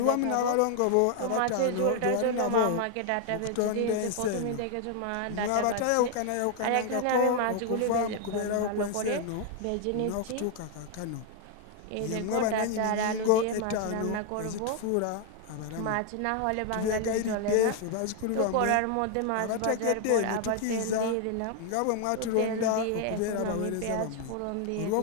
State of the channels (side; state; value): both; different; correlation 0.00